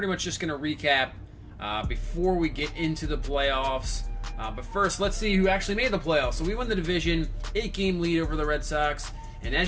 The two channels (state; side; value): identical; both; correlation 1.00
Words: much just going to recap before we get into the playoffs. But first, let's see who actually made the playoffs. So we won the division, 8-game lead over the Red Sox, and